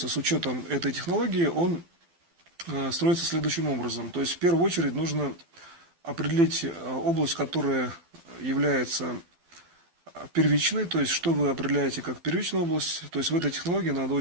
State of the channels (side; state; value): left; late; 12 ms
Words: с учетом этой технологии, он строится следующим образом. То есть в первую очередь нужно определить область, которая является первичной, то есть что вы определяете как первичную область. То есть в этой технологии надо